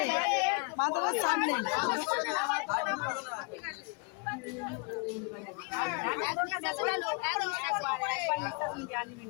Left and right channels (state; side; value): quieter; right; 31.4 dB